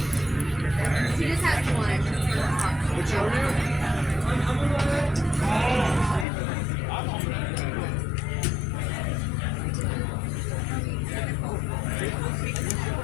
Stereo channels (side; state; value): right; drops out; at 6.2 s